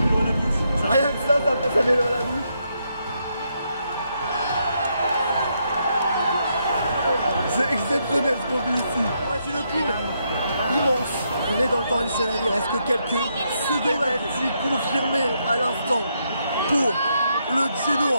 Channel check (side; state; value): both; inverted; correlation -0.78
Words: à la bouche. Rien que ça met l'eau à la bouche. C'est exceptionnel ce qu'on vit ici. C'est une pile Immense. On est dans le temps additionnel, il reste que quelques secondes. Confirmé à l'instant pour le